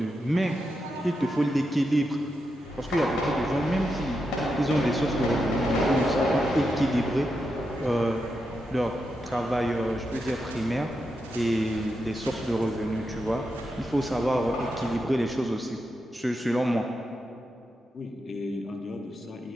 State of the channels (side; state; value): both; normal; correlation 0.86